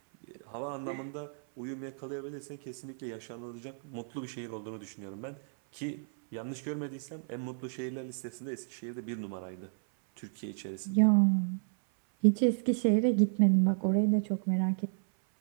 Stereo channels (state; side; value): silent; left; 56 dB below the other